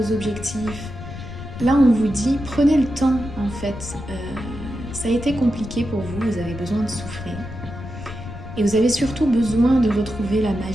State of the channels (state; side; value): noise; left; rumble, 11 dB below the sound